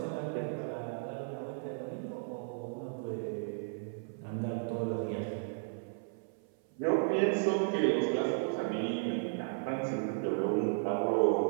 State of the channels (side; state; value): left; silent; 55 dB below the other